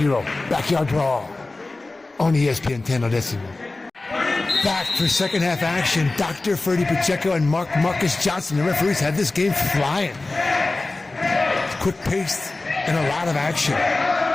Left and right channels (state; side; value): quieter; right; 3.2 dB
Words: backyard brawl on ESPN 10 Odessimo. Back for second half action. Dr. Ferdy Pacheco and Marcus Johnson, the referees, had this game flying. Quick paced and a lot of action.